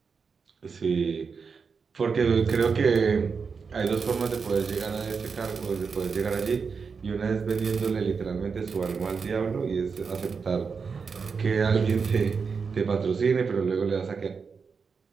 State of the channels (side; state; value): left; quieter; 5.4 dB